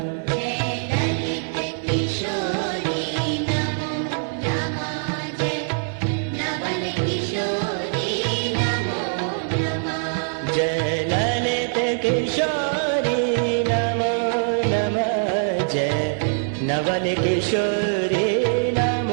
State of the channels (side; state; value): left; silent; digital silence